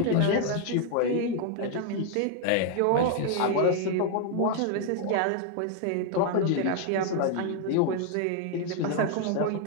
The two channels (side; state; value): both; different; correlation 0.00